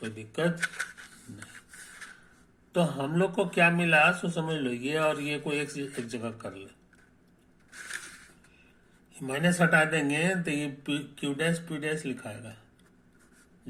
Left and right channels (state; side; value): identical; both; correlation 1.00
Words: दिक्कत नहीं। तो हम लोग को क्या मिला सो समझ लो, ये और ये को एक जगह कर ले, माइनस हटा देंगे तो ये Q डैश P डैश लिखाएगा,